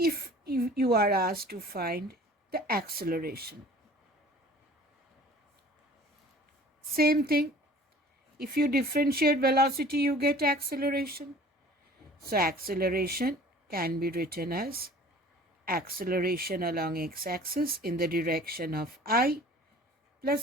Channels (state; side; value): normal; both; correlation 0.47